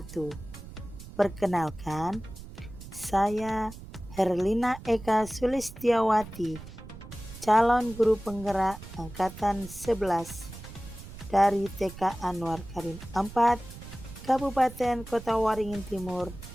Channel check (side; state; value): right; noise; rumble, 14 dB below the sound